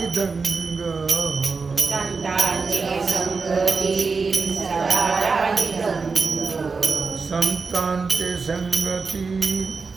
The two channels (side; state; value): left; quieter; 4.6 dB